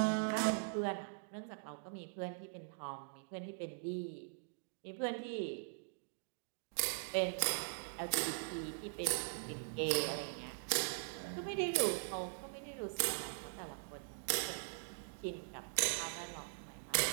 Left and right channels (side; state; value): left; silent; digital silence